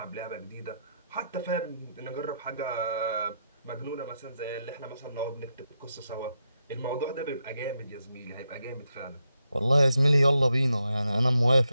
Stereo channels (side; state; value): both; inverted; correlation -0.83